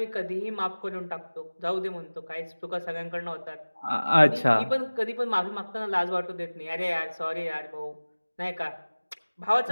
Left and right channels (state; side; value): inverted; both; correlation -1.00